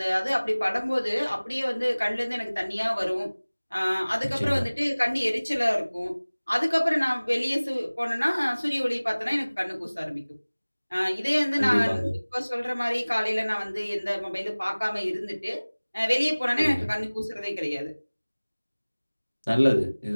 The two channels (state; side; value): inverted; both; correlation -1.00